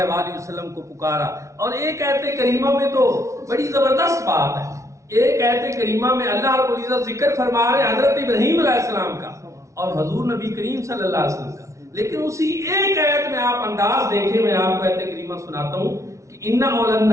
وآلہ وسلم کو پکارا۔ اور ایک آیت کریمہ میں تو بڑی زبردست بات ہے، ایک آیت کریمہ میں اللہ رب العزت ذکر فرما رہے حضرت ابراہیم علیہ السلام کا اور حضور نبی کریم صلی اللہ علیہ وسلم کا، لیکن اسی ایک آیت میں آپ انداز دیکھیں، میں آپ کو آیت کریمہ سناتا ہوں کہ ان اول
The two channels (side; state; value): left; late; 0.14 ms